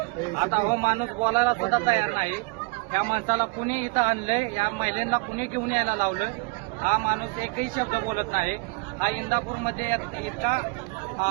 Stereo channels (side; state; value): left; quieter; 28.4 dB